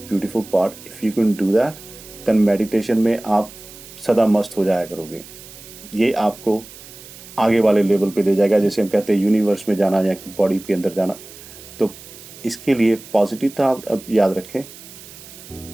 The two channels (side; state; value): right; noise; hiss, 18 dB below the sound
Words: part. If you can do that, then meditation में आप सदा मस्त हो जाया करोगे। ये आपको आगे वाले लेवल पे ले जाएगा, जैसे हम कहते हैं यूनिवर्स में जाना या बॉडी के अंदर जाना। तो इसके लिए पॉजिटिव था अब याद रखें,